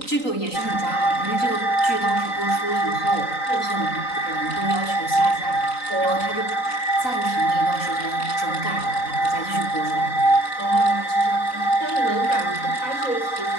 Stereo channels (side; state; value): right; late; 3.9 ms